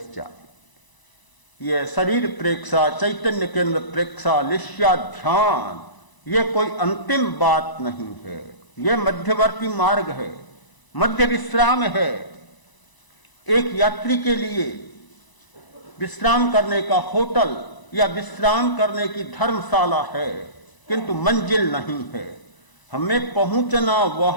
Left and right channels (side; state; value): right; late; 1.0 ms